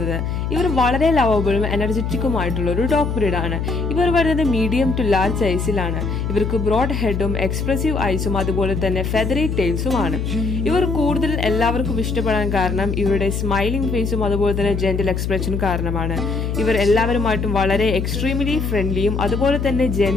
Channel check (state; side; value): noise; left; hum, 2 dB below the sound